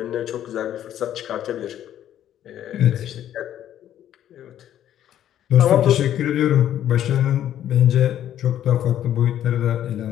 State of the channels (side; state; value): right; quieter; 11.2 dB